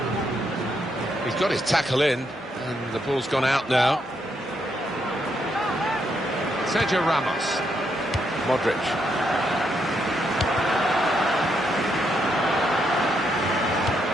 He's got his tackle in, and the ball's gone out now. Sergio Ramos. Modric.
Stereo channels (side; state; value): both; normal; correlation 0.78